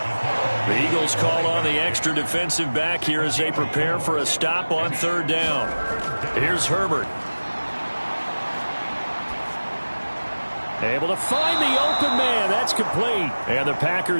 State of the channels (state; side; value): inverted; both; correlation -1.00